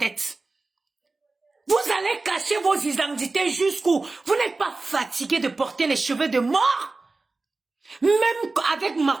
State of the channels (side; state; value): left; quieter; 3.5 dB